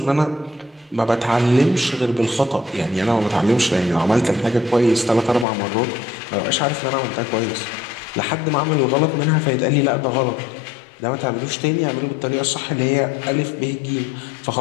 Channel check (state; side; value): drops out; right; at 5.5 s